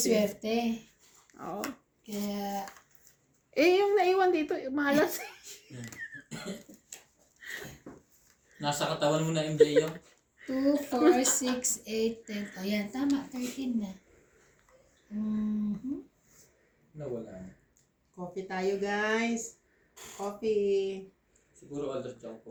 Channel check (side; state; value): both; identical; correlation 1.00